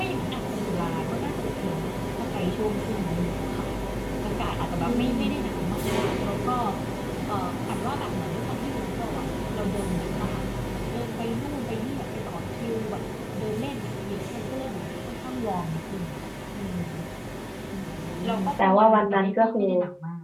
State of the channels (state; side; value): identical; both; correlation 1.00